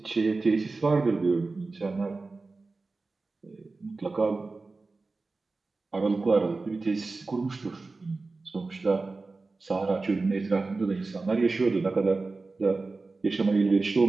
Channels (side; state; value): left; quieter; 3.7 dB